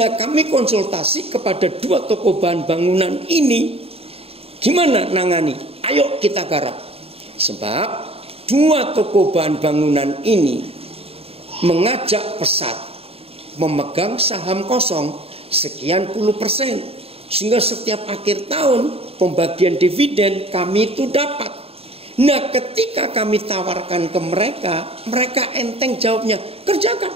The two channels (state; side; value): late; left; 0.28 ms